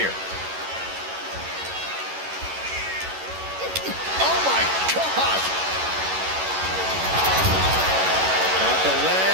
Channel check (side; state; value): left; late; 11 ms